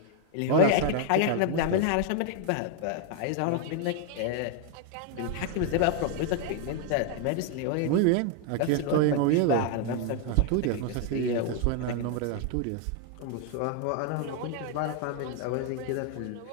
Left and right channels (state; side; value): different; both; correlation 0.00